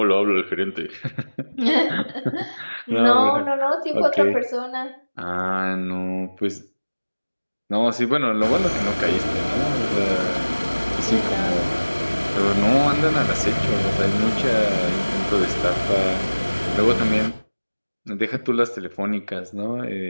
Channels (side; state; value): both; inverted; correlation -1.00